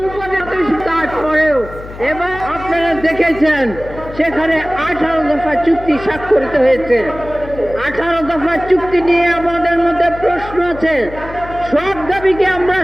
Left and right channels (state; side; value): noise; left; hum, 14 dB below the sound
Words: উপদেষ্টা, তারপরেও এবং আপনারা দেখেছেন সেখানে 18 দফা চুক্তি স্বাক্ষরিত হয়েছে। 18 দফা চুক্তি নিয়ে আমাদের মধ্যে প্রশ্ন আছে। সব দাবিকে আমরা